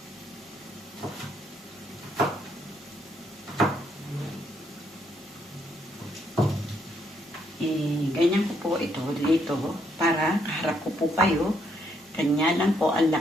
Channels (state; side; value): normal; both; correlation 0.73